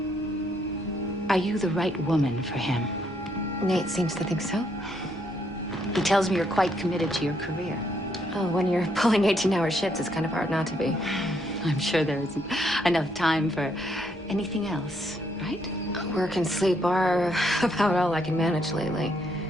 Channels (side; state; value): both; normal; correlation 0.73